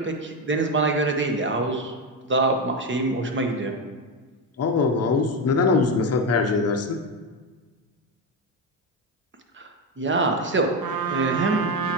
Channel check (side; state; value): both; normal; correlation 0.12